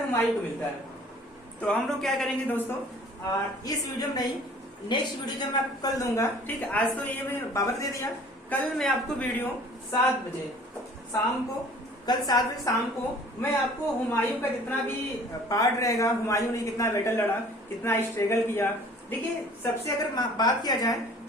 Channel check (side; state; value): both; normal; correlation 0.50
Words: हुमायूं को मिलता है। तो हम लोग क्या करेंगे दोस्तों, इस वीडियो में नहीं, नेक्स्ट वीडियो जब मैं आपको कल दूंगा, ठीक है। आज तो ये मैं बाबर दे दिया, कल मैं आपको वीडियो 7 बजे शाम को, कल 7 बजे शाम को मैं आपको हुमायूं का जितना भी पार्ट रहेगा, हुमायूं ने कितना बैटल लड़ा, कितना स्ट्रगल किया। देखिए सबसे अगर बात किया जाए